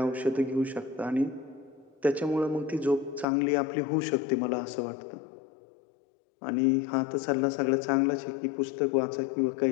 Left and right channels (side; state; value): right; drops out; at 3.2 s